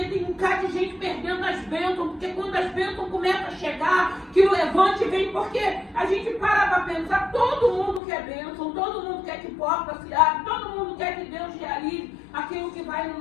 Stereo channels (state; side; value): drops out; right; at 8.0 s